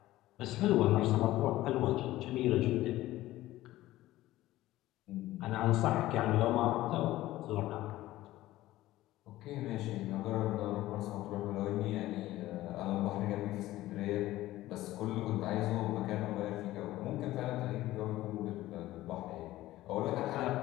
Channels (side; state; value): right; quieter; 16.0 dB